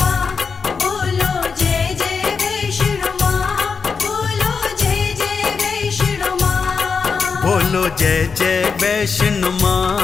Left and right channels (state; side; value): quieter; right; 5.3 dB